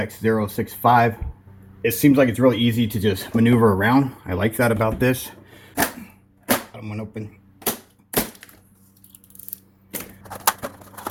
065. It seems like it's really easy to just maneuver around. I like that about this. Bottom one open.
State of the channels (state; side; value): identical; both; correlation 1.00